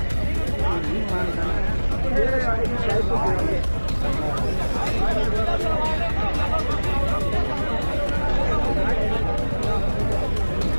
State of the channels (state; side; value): inverted; both; correlation -1.00